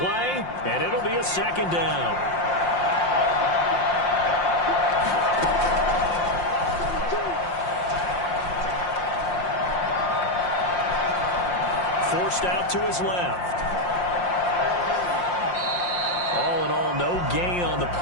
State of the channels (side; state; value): right; late; 5.7 ms